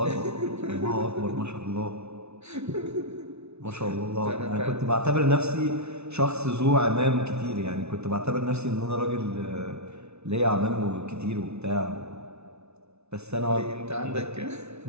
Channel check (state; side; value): late; left; 0.81 ms